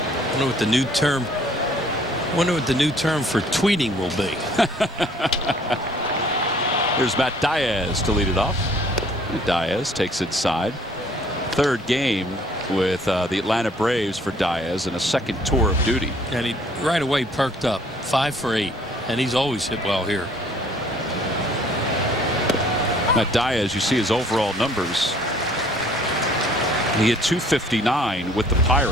I wonder what the new term. Wonder what the new term for tweeting will be. Here's Matt Diaz to lead it off. Diaz takes inside. Third game with the Atlanta Braves for Diaz in a second tour of duty. And he right away perked up. 5 for 8. And he's always hit well here. Matt Diaz, you see his overall numbers. He hit .259 with the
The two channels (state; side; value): normal; both; correlation 0.57